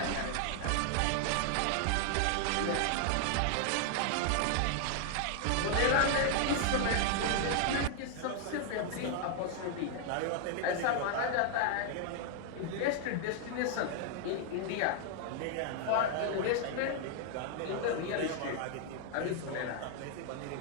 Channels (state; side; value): different; both; correlation 0.00